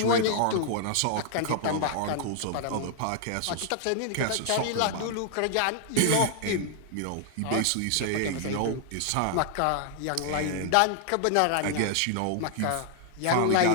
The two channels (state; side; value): different; both; correlation 0.00